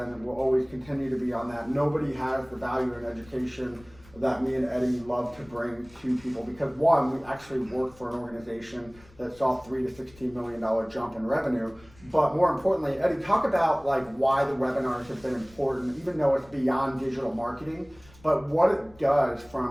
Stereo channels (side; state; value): left; noise; rumble, 25 dB below the sound